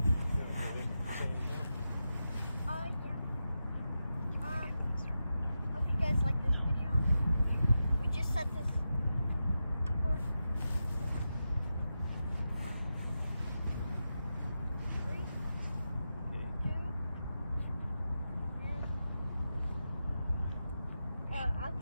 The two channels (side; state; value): both; inverted; correlation -0.89